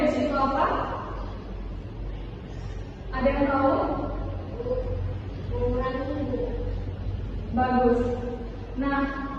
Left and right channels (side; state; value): both; identical; correlation 1.00